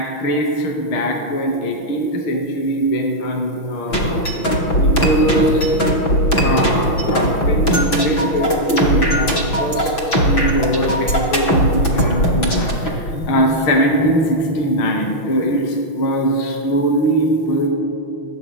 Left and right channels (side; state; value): right; late; 6.1 ms